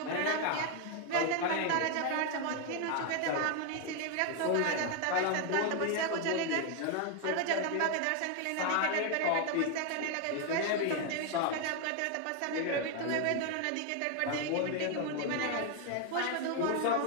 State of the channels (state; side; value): different; both; correlation 0.01